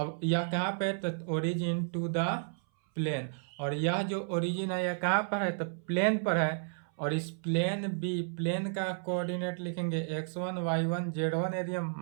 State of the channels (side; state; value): left; silent; 56 dB below the other